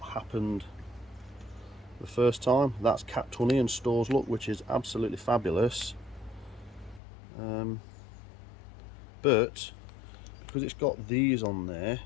happened the first time. That's capped honey and stores look, which is absolutely fabulous. But because it's got these on there,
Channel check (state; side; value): drops out; right; at 7.0 s